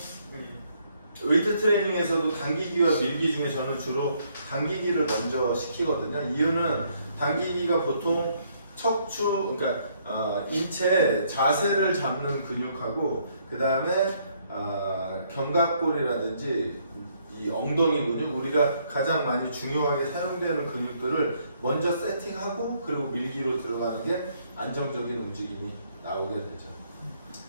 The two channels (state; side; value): inverted; both; correlation -0.69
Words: 웨이트 트레이닝에서도 당기기와 밀기 중에 저는 주로 당기기를 먼저 시키거든요. 이유는 당기기가 보통 척추, 그러니까 인체 자세를 잡는 근육하고, 그 다음에 견갑골이라든지 이 엉덩이 근육, 우리가 가장 많이 중요하게 사용되는 근육들을 먼저 세팅하고 그리고 밀기로 들어가는 게 안정적인 움직임이 나오게 되죠.